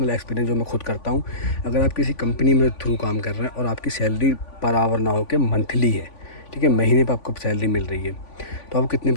एक्सपीरियंस जो मैं खुद करता हूँ, अगर आप किसी कंपनी में थ्रू काम कर रहे हैं और आपकी सैलरी पर आवर ना हो के मंथली है, ठीक है, महीने पर आपको सैलरी मिल रही है, तो आप कितने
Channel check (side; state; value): right; late; 3.5 ms